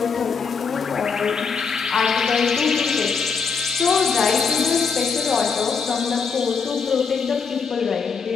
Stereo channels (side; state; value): right; quieter; 5.5 dB